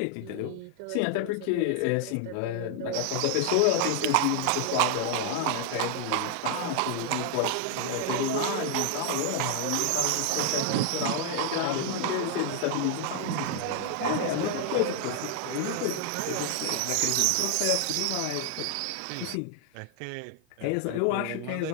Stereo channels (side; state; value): both; different; correlation 0.00